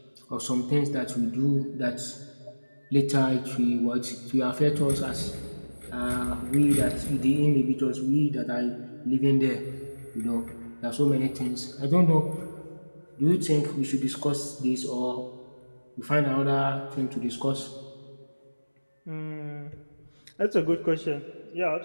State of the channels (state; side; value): inverted; both; correlation -1.00